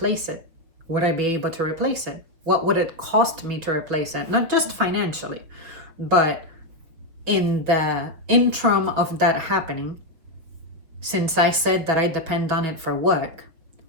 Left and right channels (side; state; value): left; late; 6.4 ms